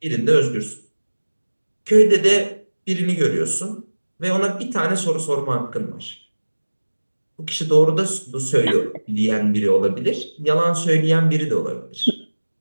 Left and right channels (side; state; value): both; inverted; correlation -1.00